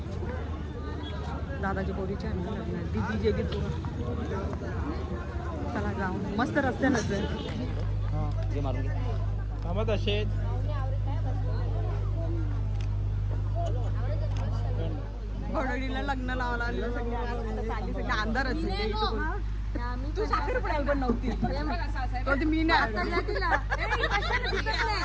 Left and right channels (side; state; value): both; identical; correlation 1.00